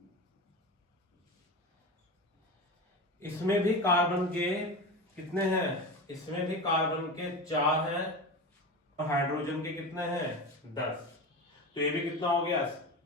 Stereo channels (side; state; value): both; normal; correlation 0.26